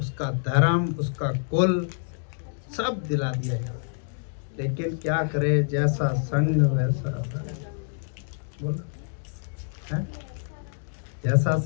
धर्म, उसका कुल सब दिला दिया गया। लेकिन क्या करे, जैसा संग वैसा रंग। बोलो, है? जैसा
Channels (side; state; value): right; silent; digital silence